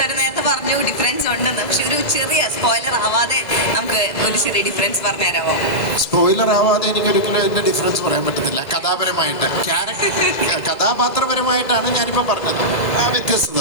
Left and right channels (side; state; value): right; late; 2.0 ms